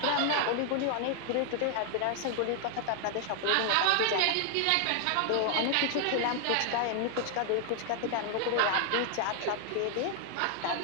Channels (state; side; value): different; both; correlation 0.00